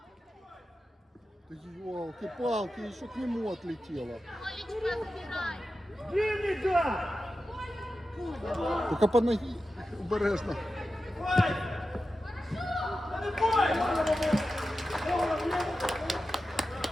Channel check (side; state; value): both; normal; correlation 0.92